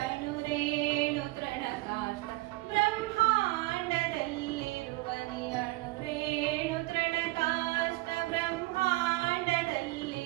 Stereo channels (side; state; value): left; quieter; 20.7 dB